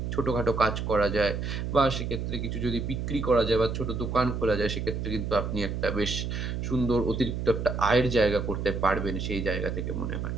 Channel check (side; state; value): right; noise; hum, 3 dB below the sound